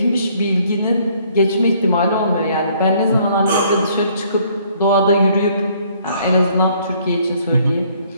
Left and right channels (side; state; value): both; inverted; correlation -0.62